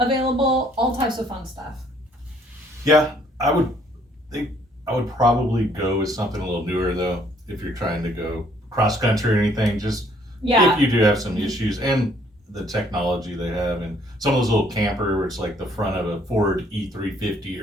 all types of fun stuff. Yeah, I would probably go with something a little newer though, if you're trying to go cross country or anything. Just if you do have some issues, and the technology they have, and some of those little camper where it's like the front of a Ford E350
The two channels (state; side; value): normal; both; correlation 0.63